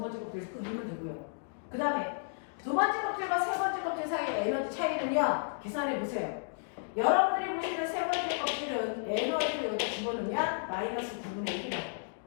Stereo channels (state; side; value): silent; right; digital silence